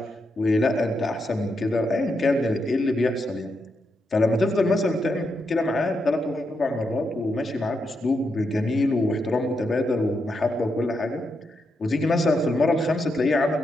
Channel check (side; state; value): both; normal; correlation 0.83